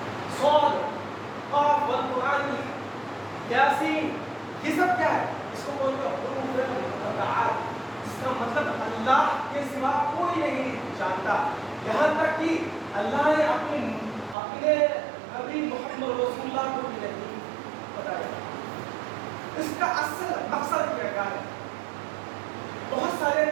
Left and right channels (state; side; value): drops out; left; at 14.4 s